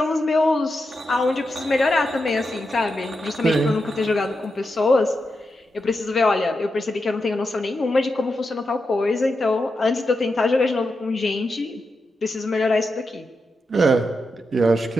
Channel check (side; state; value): both; normal; correlation 0.87